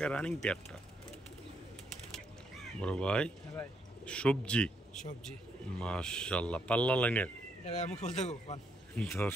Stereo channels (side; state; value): both; normal; correlation 0.75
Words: রানিং পেয়ারটা। বড় ভাই সবজি মাশাআল্লাহ পাল্লা লাইনের